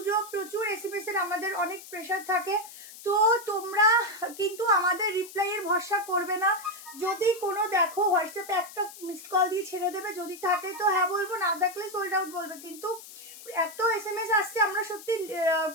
প্রচুর এসএমএস এর আমাদের অনেক প্রেশার থাকে, তো তোমরা কিন্তু আমাদের রিপ্লাইয়ের ভরসা করবে না। যদি কোনো দেখো হোয়াটসঅ্যাপে একটা মিসড কল দিয়ে ছেড়ে দেবে, যদি থাকে তো হ্যাঁ বলবো, না থাকলে সোল্ড আউট বলবে। কিন্তু এত এসএমএস আসছে, আমরা সত্যি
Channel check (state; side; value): noise; left; hiss, 16 dB below the sound